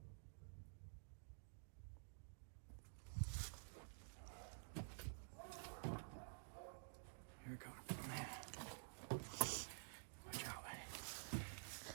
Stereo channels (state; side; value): silent; left; digital silence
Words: Here we go. Watch out.